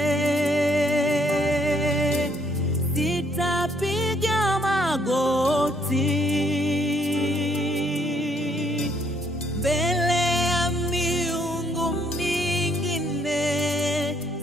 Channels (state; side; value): normal; both; correlation 0.68